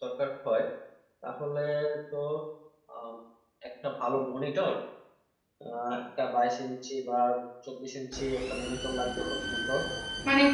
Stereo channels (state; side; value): identical; both; correlation 1.00